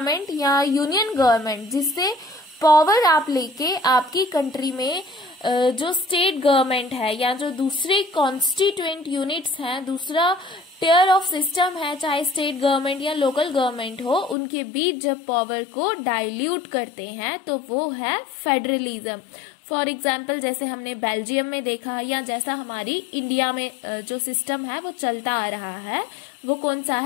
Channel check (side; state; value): right; drops out; at 14.4 s